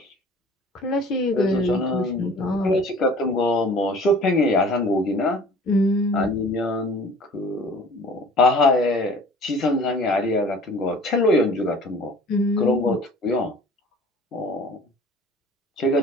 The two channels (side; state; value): both; normal; correlation 0.47